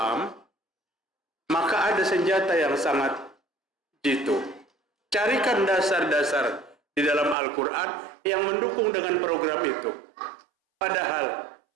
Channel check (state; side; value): drops out; left; at 7.4 s